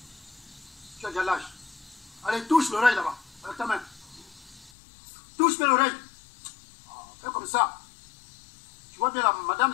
Tu as déjà l'âge. Allez, touche l'oreille là-bas, avec ta main. Touche bien l'oreille. Fais comme ça. Tu vois bien la madame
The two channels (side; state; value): right; drops out; at 4.7 s